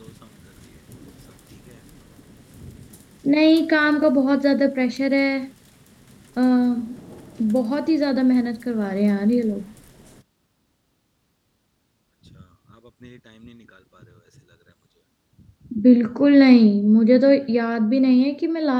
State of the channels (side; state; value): both; identical; correlation 1.00